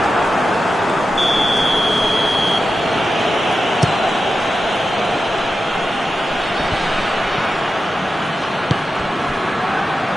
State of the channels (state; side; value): normal; both; correlation 0.91